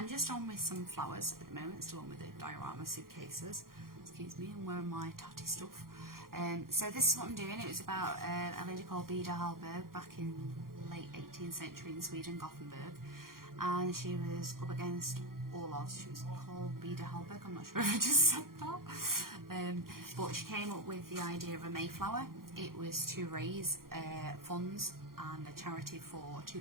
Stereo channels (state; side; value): late; left; 0.92 ms